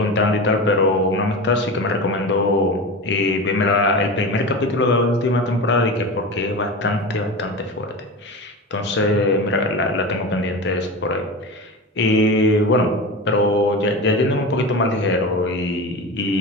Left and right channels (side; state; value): both; normal; correlation 0.27